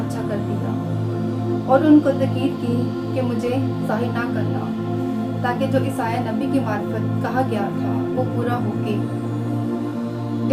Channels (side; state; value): both; identical; correlation 1.00